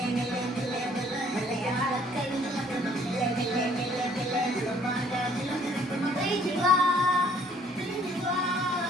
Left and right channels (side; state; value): both; normal; correlation 0.60